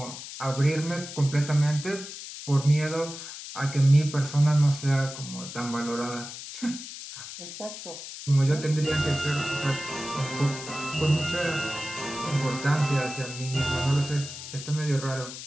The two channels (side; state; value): left; noise; hiss, 11 dB below the sound